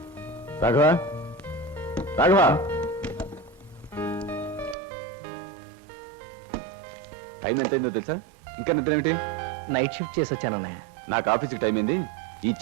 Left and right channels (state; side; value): drops out; left; at 4.8 s